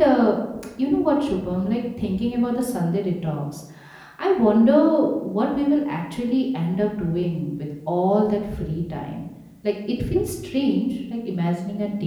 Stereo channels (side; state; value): both; identical; correlation 1.00